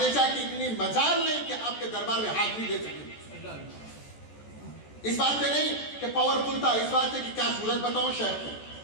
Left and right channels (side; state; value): right; late; 14 ms